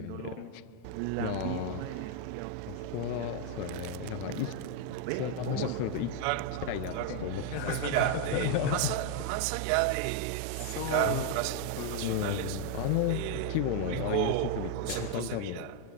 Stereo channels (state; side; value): different; both; correlation 0.01